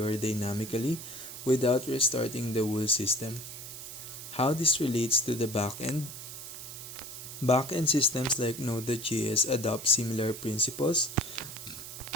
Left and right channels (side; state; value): right; noise; hiss, 11 dB below the sound